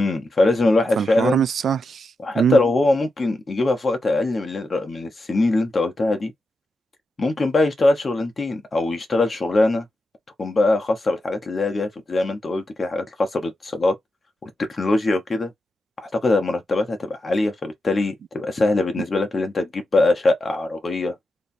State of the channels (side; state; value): both; normal; correlation 0.88